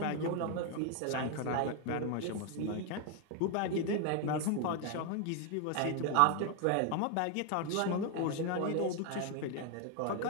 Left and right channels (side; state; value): both; different; correlation 0.01